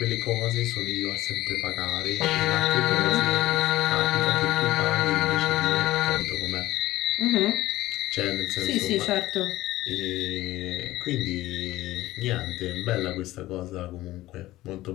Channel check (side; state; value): right; quieter; 16.5 dB